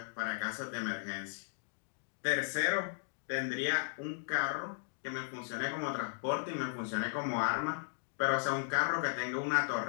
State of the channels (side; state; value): right; silent; digital silence